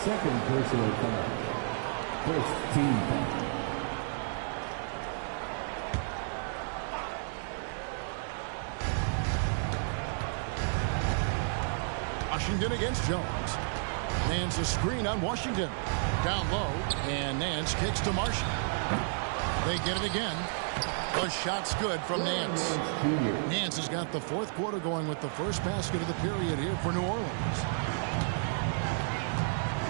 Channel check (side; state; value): left; silent; 57 dB below the other